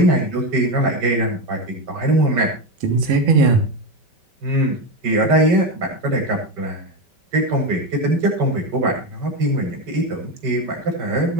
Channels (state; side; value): late; left; 5.1 ms